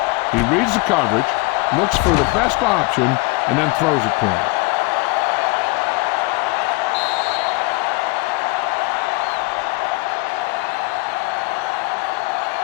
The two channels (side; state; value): right; quieter; 25.0 dB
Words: He reads the coverage, looks for the best option, and then throws it to him.